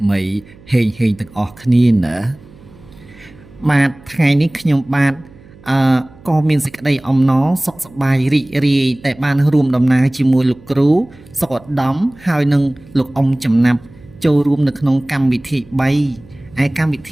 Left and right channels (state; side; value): noise; right; hum, 24 dB below the sound